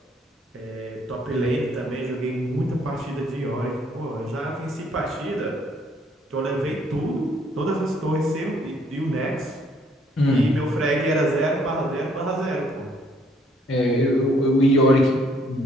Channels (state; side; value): normal; both; correlation 0.66